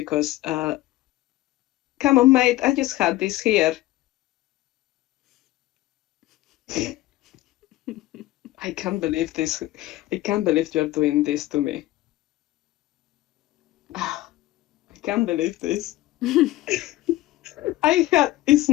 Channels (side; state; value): right; quieter; 16.7 dB